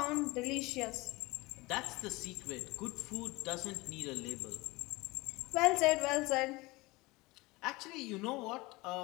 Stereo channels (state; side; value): quieter; right; 22.6 dB